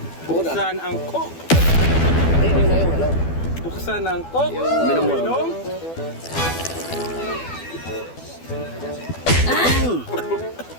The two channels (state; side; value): late; right; 12 ms